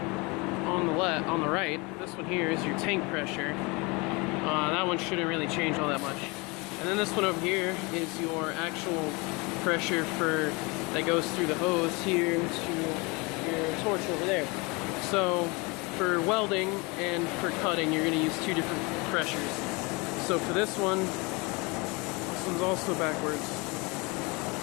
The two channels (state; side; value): quieter; right; 27.2 dB